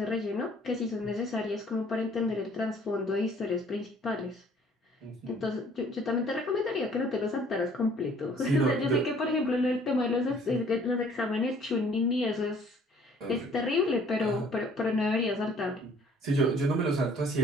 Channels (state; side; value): normal; both; correlation 0.57